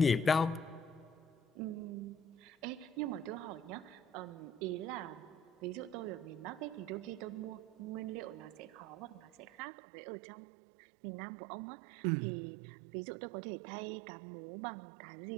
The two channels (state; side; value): drops out; left; at 9.7 s